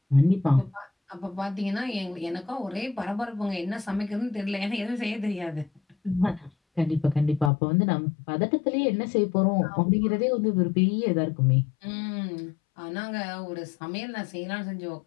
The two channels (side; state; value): right; drops out; at 7.5 s